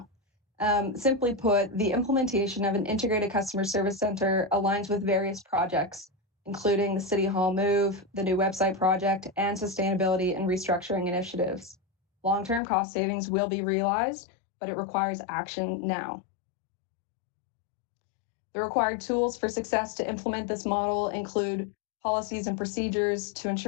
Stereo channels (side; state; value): right; drops out; at 12.6 s